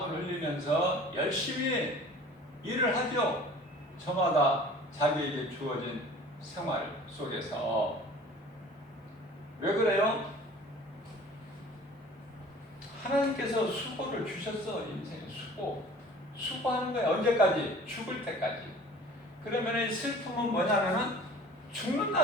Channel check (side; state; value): both; normal; correlation 0.46